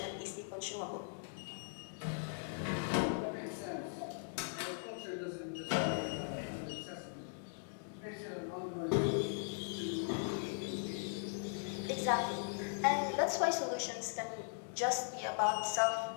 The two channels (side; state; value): right; silent; digital silence